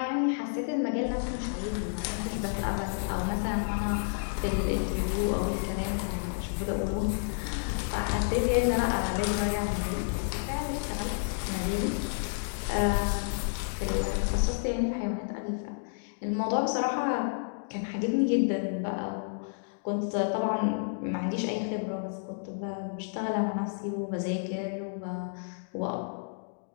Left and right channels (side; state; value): right; silent; digital silence